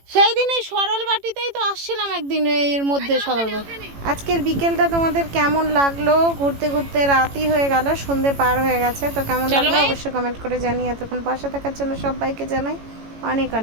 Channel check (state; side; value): late; left; 18 ms